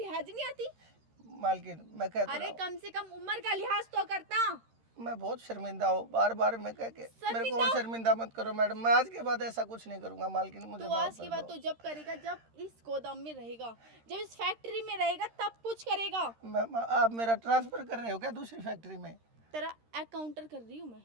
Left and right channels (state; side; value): late; left; 13 ms